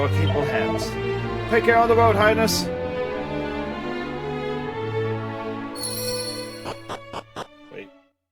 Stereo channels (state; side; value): identical; both; correlation 1.00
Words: capable hands. Take care on the road, Highness. Wait.